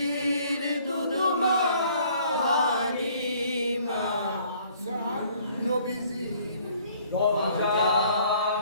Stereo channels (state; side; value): inverted; both; correlation -0.59